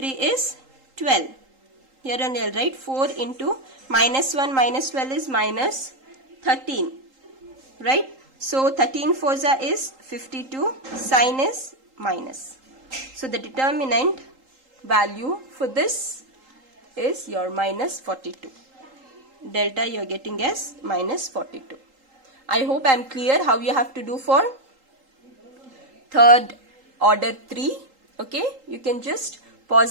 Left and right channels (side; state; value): left; late; 3.8 ms